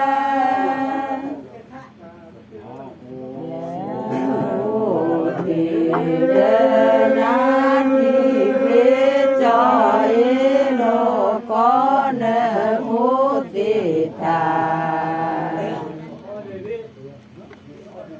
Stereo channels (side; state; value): both; identical; correlation 1.00